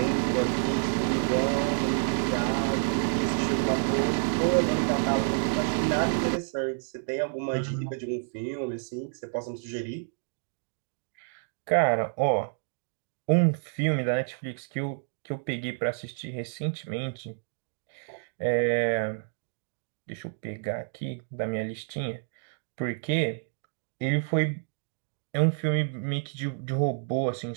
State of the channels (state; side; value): silent; left; digital silence